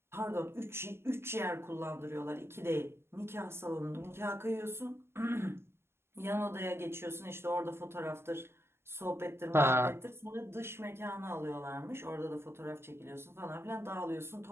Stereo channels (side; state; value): left; late; 0.12 ms